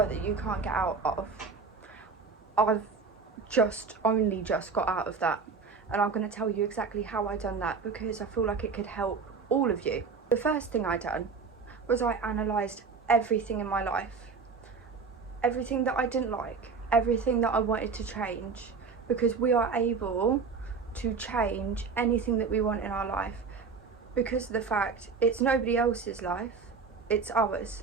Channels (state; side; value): quieter; left; 5.0 dB